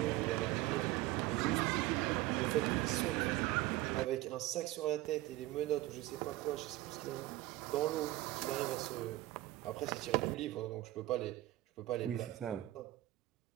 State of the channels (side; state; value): left; quieter; 17.2 dB